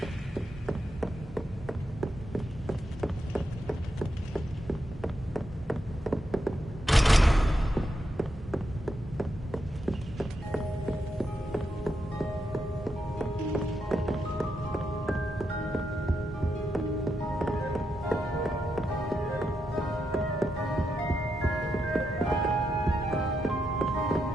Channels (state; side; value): normal; both; correlation 0.83